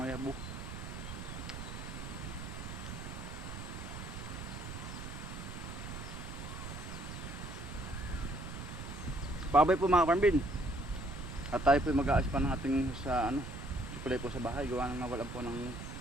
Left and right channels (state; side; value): noise; right; rumble, 8 dB below the sound